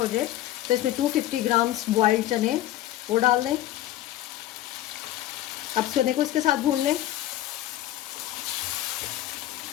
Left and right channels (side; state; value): right; quieter; 13.9 dB